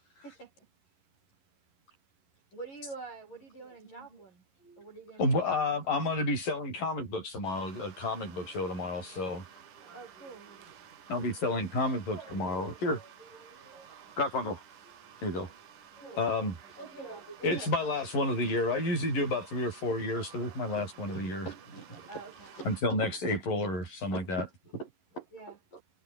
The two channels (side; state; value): right; late; 11 ms